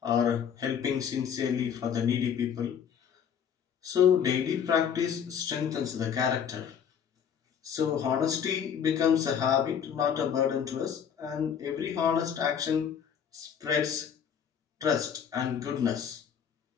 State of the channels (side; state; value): right; quieter; 7.9 dB